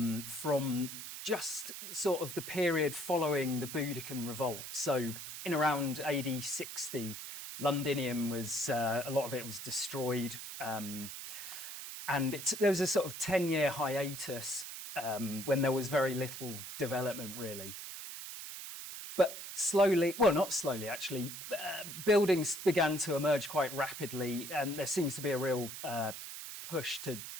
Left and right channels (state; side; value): noise; right; hiss, 9 dB below the sound